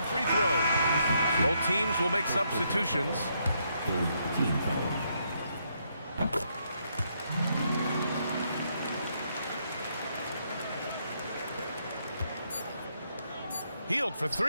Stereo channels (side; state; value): both; inverted; correlation -0.76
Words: free throw. Both teams will make substitutions. Hield for